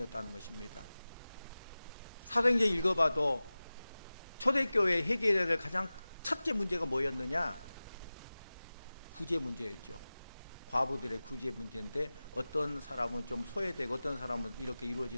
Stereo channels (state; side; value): inverted; both; correlation -0.97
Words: 것입니다. 사도행전 읽어봐도 초대교회 해결해야 될 가장 첫째 문제가 뭐였느냐? 구제 문제였죠. 과부들의 구제 문제인데, 어떤 사람은 좀 소외되고 어떤 사람은 이렇게